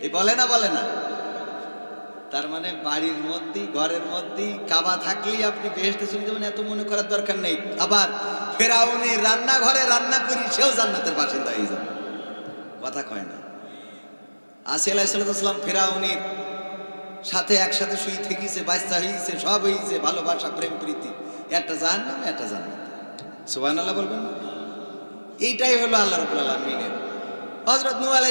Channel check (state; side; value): inverted; both; correlation -1.00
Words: এই বলে না, বলে না? তার মানে বাড়ির মধ্যেই ঘরের মধ্যেই কাবা থাকলেই আপনি বেহেশতে চলে যাবেন, এত মনে করার দরকার নেই। আবার ফেরাউনি রান্নাঘরে রান্না করি সেও জান্নাতের বাসিন্দা হয়ে যাবে, কথা কয় না? আসিয়া আলাইহিস সালাম ফেরাউনির সাথে একসাথে শুই থেকেছে, বাচ্চা হয়েছে, সব হয়েছে, ভালোবাসা প্রেম প্রীতি, একটা জাহান্নাম একটা জান্নাত। সুবহানাল্লাহ বলবেন না? এইটাই হলো আল্লাহ রাব্বুল আলামিনের। হযরত নূহ